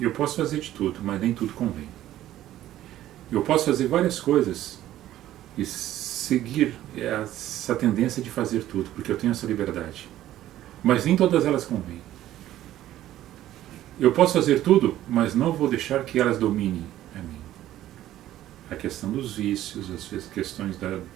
posso fazer de tudo, mas nem tudo convém. Eu posso fazer várias coisas e seguir essa tendência de fazer tudo, porque eu tenho essa liberdade. Mas nem todas elas convêm. Eu posso fazer tudo, mas não vou deixar que elas dominem a mim. A questão dos vícios, as questões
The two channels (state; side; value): quieter; left; 13.4 dB